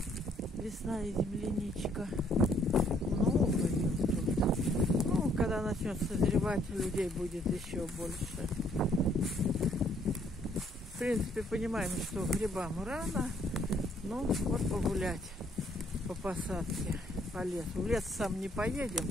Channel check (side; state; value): both; normal; correlation 0.66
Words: Весна и земляничка. Много ее тут. Ну, когда начнет созревать, людей будет еще больше. В принципе, понимаем, что грибам рано. Ну, вот погулять по посадке, по лесу. В лес сам не